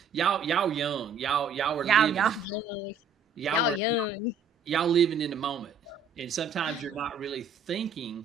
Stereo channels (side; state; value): left; quieter; 5.0 dB